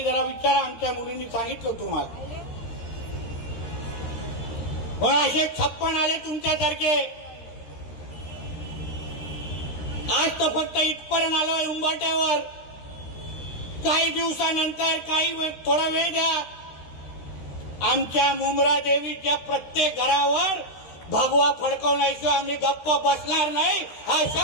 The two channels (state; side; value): late; right; 13 ms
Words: जरा विचारा. आमच्या मुलींनी सांगितलं तुम्हाला. पण असे 56 आले तुमच्यासारखे. आज तर फक्त इथपर्यंत आलोय उंबाट्यावर. काही दिवसानंतर थोडा वेळ द्या. आमच्या मुंब्रा देवीच्या प्रत्येक घरावर भगवा फडकवण्याशिवाय आम्ही गप्प बसणार नाही. हा